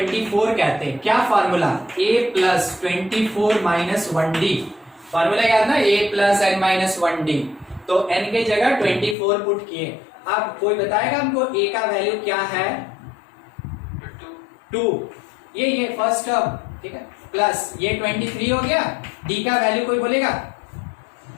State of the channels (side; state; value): right; drops out; at 9.2 s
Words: कहते हैं। क्या formula, a plus 24 minus 1d, formula याद ना, a plus n minus 1d। तो n के जगह 24 पुट किए। अब कोई बताएगा हमको a का वैल्यू क्या है, 2, ये फर्स्ट टर्म। ठीक है, प्लस ये 23 हो गया, d का वैल्यू कोई बोलेगा